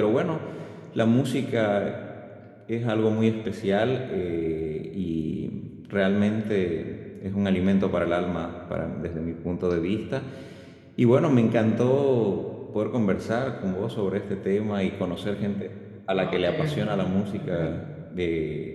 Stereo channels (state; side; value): identical; both; correlation 1.00